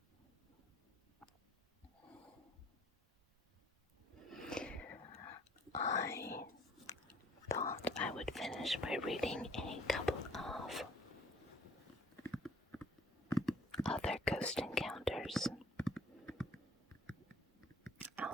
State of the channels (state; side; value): normal; both; correlation 0.58